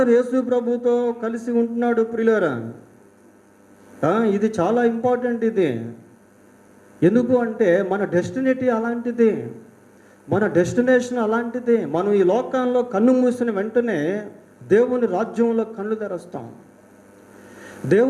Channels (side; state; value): both; identical; correlation 1.00